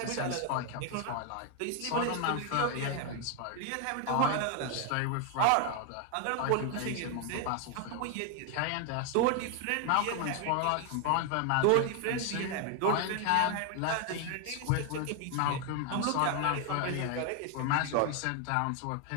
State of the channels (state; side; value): different; both; correlation 0.01